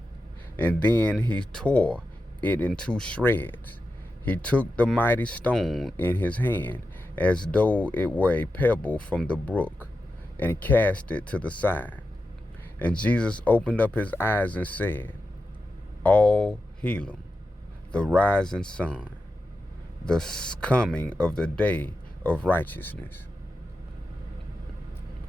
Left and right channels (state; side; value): normal; both; correlation 0.90